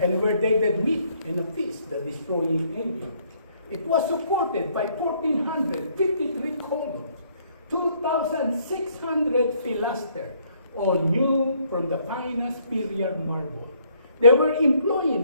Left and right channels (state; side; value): inverted; both; correlation -0.66